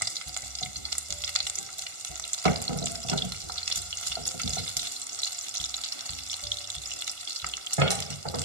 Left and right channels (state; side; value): late; left; 1.4 ms